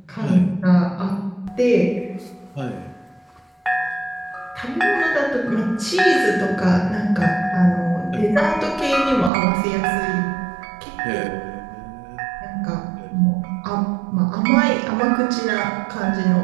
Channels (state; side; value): drops out; left; at 9.3 s